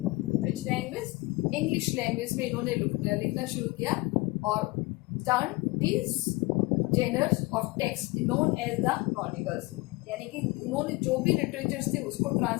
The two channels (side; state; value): right; quieter; 22.4 dB